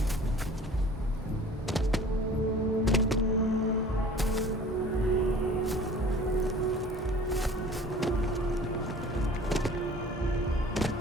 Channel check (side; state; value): both; normal; correlation 0.46